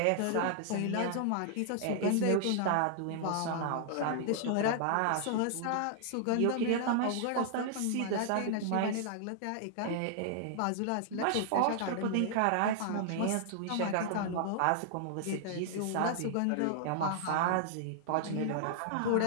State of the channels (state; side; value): different; both; correlation -0.01